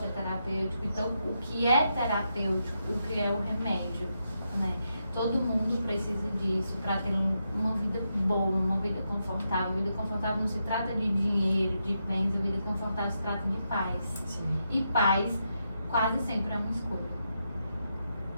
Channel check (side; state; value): both; inverted; correlation -0.83